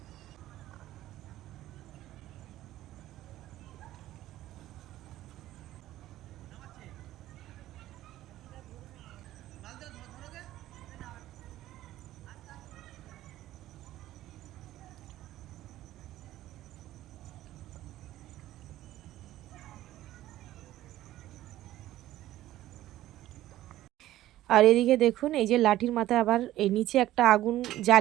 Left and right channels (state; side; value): quieter; left; 14.5 dB